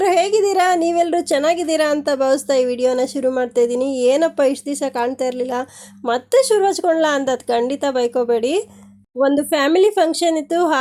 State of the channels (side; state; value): both; identical; correlation 1.00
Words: ಹೇಗಿದ್ದೀರಾ? ನೀವೆಲ್ಲರೂ ಚೆನ್ನಾಗಿದ್ದೀರಾ ಅಂತ ಭಾವಿಸ್ತಾ ಈ ವಿಡಿಯೋನ ಶುರು ಮಾಡ್ತಾ ಇದ್ದೀನಿ. ಏನಪ್ಪ ಇಷ್ಟು ದಿವಸ ಕಾಣ್ತಾ ಇರಲಿಲ್ಲ, ಮತ್ತೆ ಶುರು ಹಚ್ಕೊಳ್ಳ ಅಂತ ಅದು ಖಂಡಿತ ಬೈಕೋಬೇಡಿ. ಒಂದು ಫ್ಯಾಮಿಲಿ ಫಂಕ್ಷನ್ ಇತ್ತು,